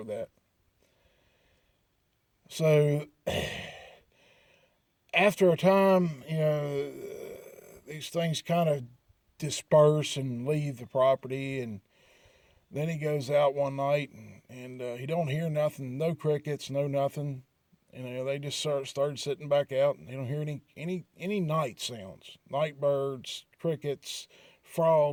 that. So after a time, these things kind of disperse and leave the property. And then he goes out one night, and and he don't hear nothing, no crickets, no nothing. They just started sitting back out, and they don't hear any night sounds, night birds, crickets,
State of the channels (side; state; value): both; identical; correlation 1.00